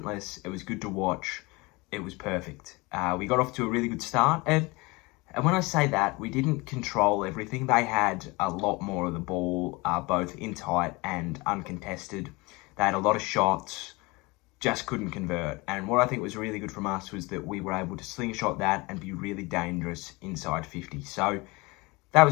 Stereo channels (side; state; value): right; quieter; 24.6 dB